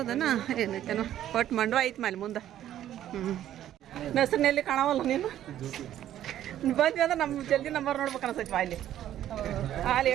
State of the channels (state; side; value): quieter; left; 11.9 dB